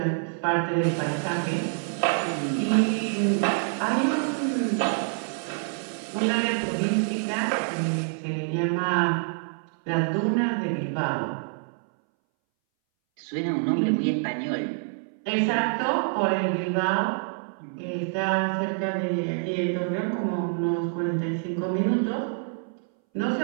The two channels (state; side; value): silent; left; 61 dB below the other